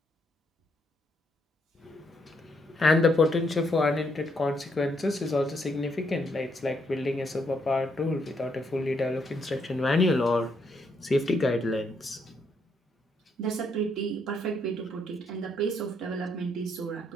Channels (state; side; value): normal; both; correlation 0.74